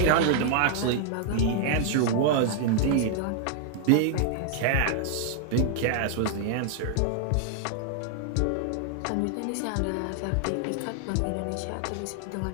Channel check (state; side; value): different; both; correlation 0.00